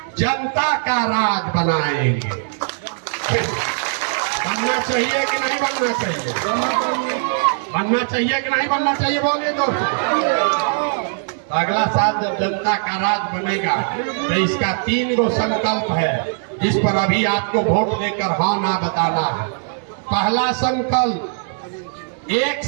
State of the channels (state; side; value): silent; left; digital silence